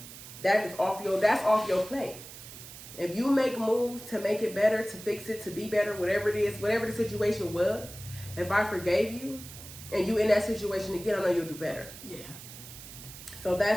That's off your plate. If you make moves to make it better, to fix it, to be better, whatever it is, whatever the situation was, if I forgave you and you in that situation again, I know you'll do better. Yeah. So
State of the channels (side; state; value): right; noise; hiss, 14 dB below the sound